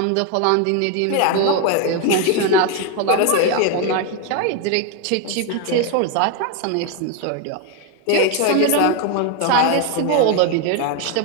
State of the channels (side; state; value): both; different; correlation 0.01